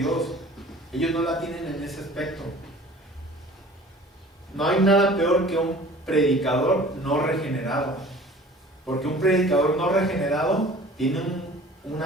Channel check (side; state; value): both; normal; correlation 0.46